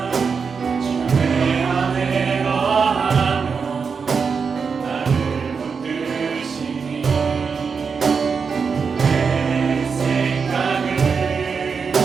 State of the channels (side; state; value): left; quieter; 5.6 dB